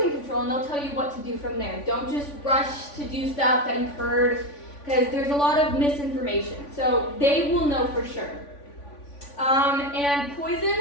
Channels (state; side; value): late; right; 3.5 ms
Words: control and they'll tell you what to do from there. Don't just rush to do stuff that you've heard, because there's a lot of misinformation. So they will know for sure. And